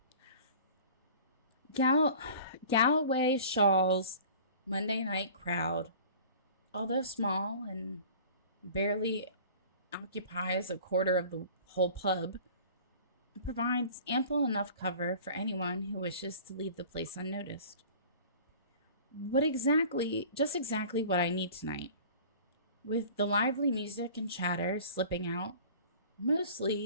Galloway Shaw's Monday night crowd, although small and barely occupies a quarter of the whole pub, provides ample enough cover for anyone who wishes to leave the place unnoticed. Just exactly what I need tonight. With the lively music and chatter slipping out,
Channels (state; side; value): inverted; both; correlation -0.44